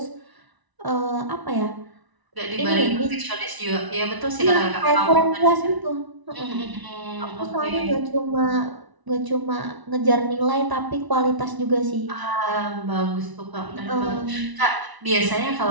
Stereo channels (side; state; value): left; late; 1.0 ms